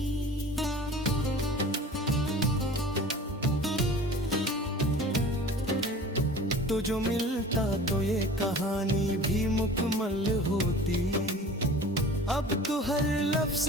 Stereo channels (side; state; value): both; normal; correlation 0.42